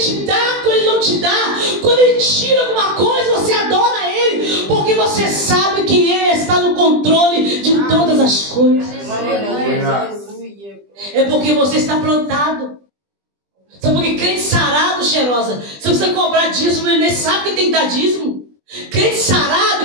dá, quando Ele não te dá. Quando Ele tira alguma coisa, você adora Ele. Porque você sabe que Ele está no controle de todas as coisas. É porque você está plantado. Sabe por que crente sarado, cheirosa? Você precisa cobrar dízimo, ele nem sabe que tem que dar dízimo. Crente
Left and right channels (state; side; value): late; left; 20 ms